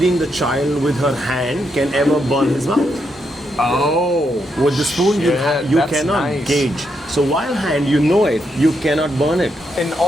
the child with her hand can ever burn his mouth. Oh. With the spoon, you that's cannot nice. gauge. So while hand, you know it, you cannot burn it. And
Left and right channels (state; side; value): normal; both; correlation 0.80